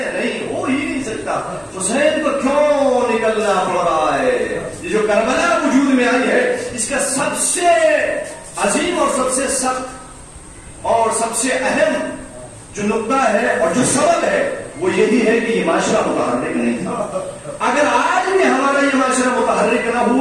نہیں، ہو ہی نہیں سکتا. حسین کو کیوں نکلنا پڑ رہا ہے؟ یہ جو کربلا وجود میں آئی ہے، اس کا سب سے عظیم اور سب سے سخت اور سب سے اہم جو نقطہ ہے اور جو سبب ہے وہ یہی ہے کہ یہ معاشرہ متحرک نہیں تھا. اگر آج بھی ہمارا یہ معاشرہ متحرک نہ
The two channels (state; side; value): identical; both; correlation 1.00